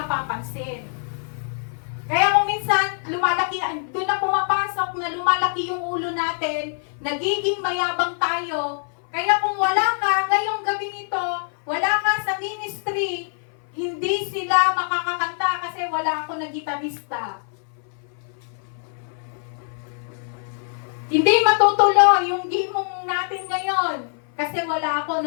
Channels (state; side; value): silent; right; 59 dB below the other